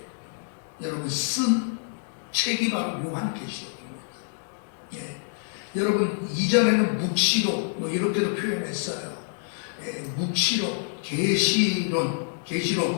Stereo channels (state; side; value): silent; right; digital silence